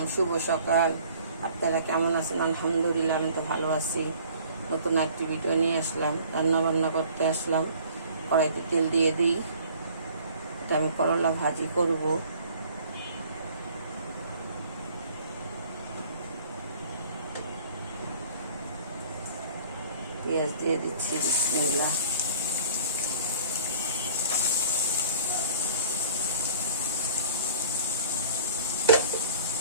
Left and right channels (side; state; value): both; inverted; correlation -0.50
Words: শুভ সকাল। আপনারা কেমন আছেন? আলহামদুলিল্লাহ, আমি তো ভালো আছি। নতুন একটি ভিডিও নিয়ে আসলাম, রান্না বান্না করতে আসলাম। কড়াইতে তেল দিয়ে দিই। এটা আমি করলা ভাজি করব। পেঁয়াজ দিয়ে দিচ্ছি, বিসমিল্লাহ।